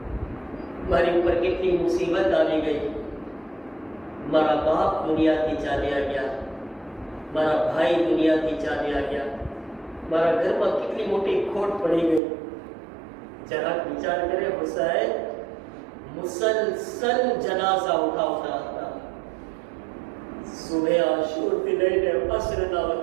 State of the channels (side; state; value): left; drops out; at 12.2 s